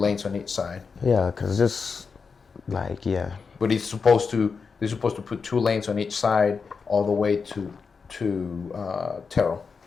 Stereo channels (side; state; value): right; quieter; 5.3 dB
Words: on each side. Yeah, cause just like But they're supposed to put 2 lanes on each side all the way to Terrell.